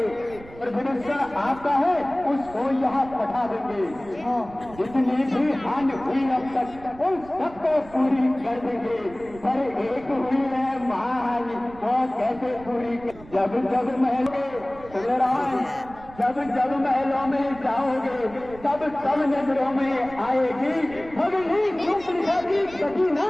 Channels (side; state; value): right; noise; rumble, 19 dB below the sound